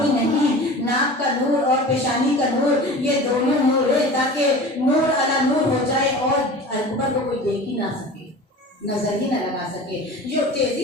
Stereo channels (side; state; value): both; normal; correlation 0.37